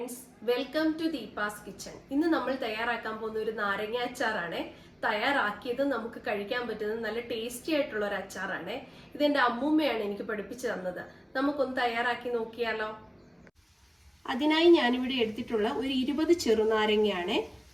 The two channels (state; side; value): identical; both; correlation 1.00